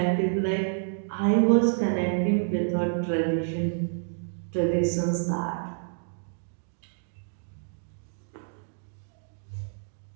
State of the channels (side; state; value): left; silent; digital silence